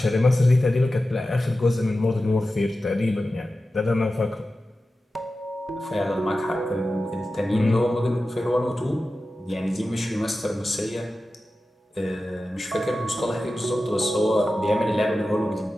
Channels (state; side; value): normal; both; correlation 0.93